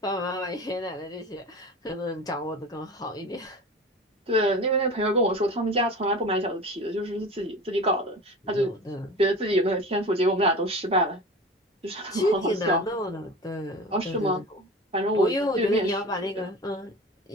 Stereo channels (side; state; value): both; normal; correlation 0.34